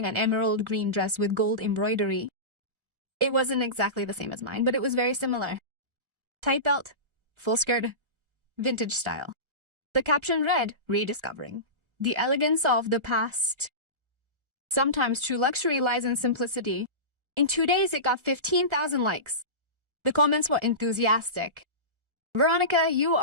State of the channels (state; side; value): late; left; 1.4 ms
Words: an emerald green dress with gold embroidery. It wasn't exactly the same as mine, but it was very similar. Tight belt, full skirt, vintage style. The caption read, Rediscovering the elegance of the past. Sometimes true luxury lies in simplicity. In 2 days, it got 15,000 likes. The comments were enthusiastic. Veronica, you